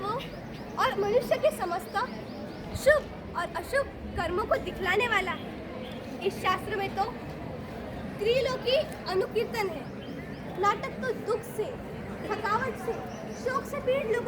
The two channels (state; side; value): identical; both; correlation 1.00